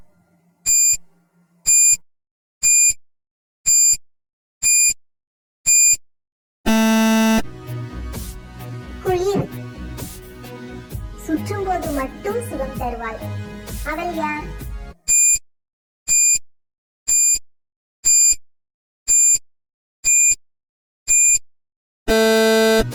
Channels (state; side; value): identical; both; correlation 1.00